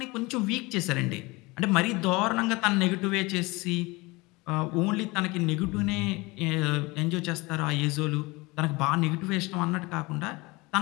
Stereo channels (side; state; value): right; quieter; 23.9 dB